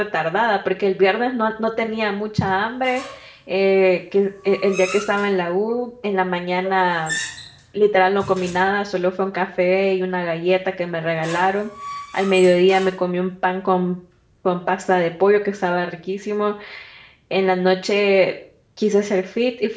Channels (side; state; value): both; identical; correlation 1.00